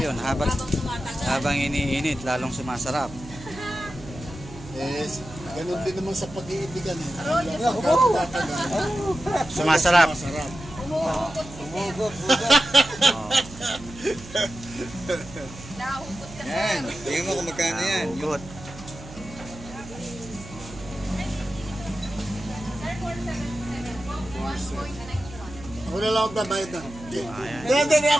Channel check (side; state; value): right; noise; hum, 16 dB below the sound